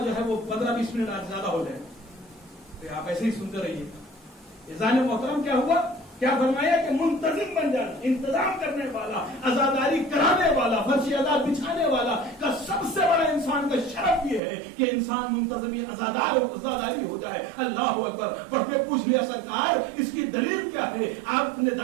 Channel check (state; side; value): drops out; left; at 14.4 s